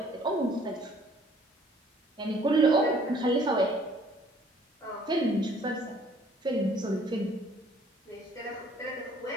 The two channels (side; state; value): both; normal; correlation 0.58